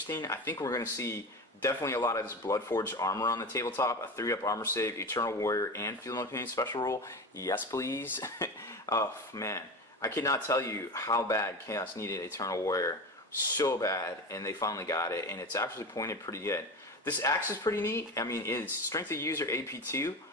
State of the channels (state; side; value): normal; both; correlation 0.27